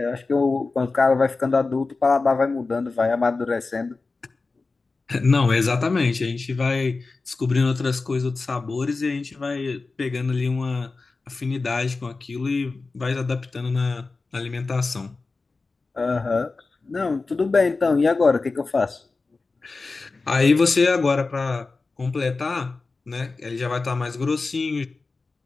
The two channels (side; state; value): right; quieter; 3.9 dB